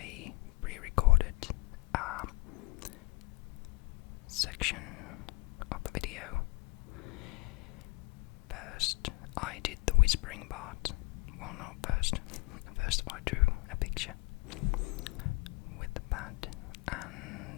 pre-recorded a section of the video. First, I did the whispering part. Well, not first. First, I drew a picture with the pad,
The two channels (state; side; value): quieter; right; 24.9 dB